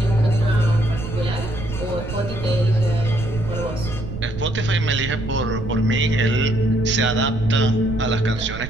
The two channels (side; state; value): right; noise; rumble, 9 dB below the sound